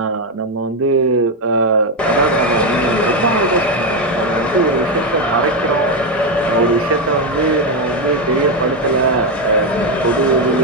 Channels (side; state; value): both; normal; correlation 0.07